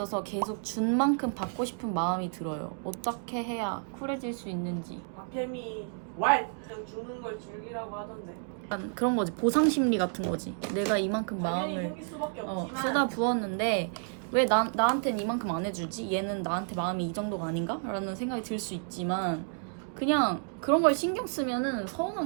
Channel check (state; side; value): silent; left; 57 dB below the other